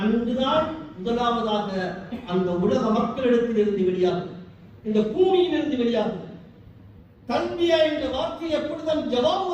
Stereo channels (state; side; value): identical; both; correlation 1.00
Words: அன்றுதான் முதலாவதாக அந்த உலக மக்களிடத்திலிருந்து வெளியாகும், இந்த பூமியிலிருந்து வெளியாகும். தன்பியா என்ற வார்த்தை எப்பொழுதும் ஜவாப்